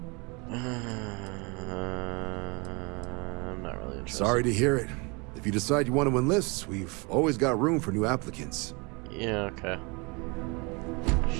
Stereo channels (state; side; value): quieter; left; 29.3 dB